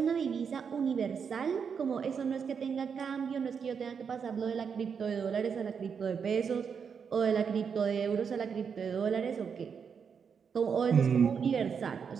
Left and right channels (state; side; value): quieter; left; 6.5 dB